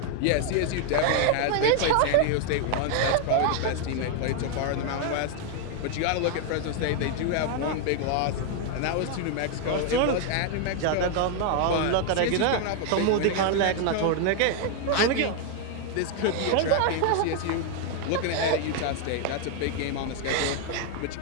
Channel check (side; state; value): both; different; correlation 0.00